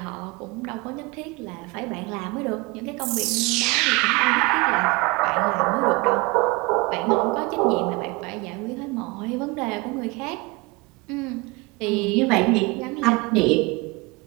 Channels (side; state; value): left; quieter; 25.5 dB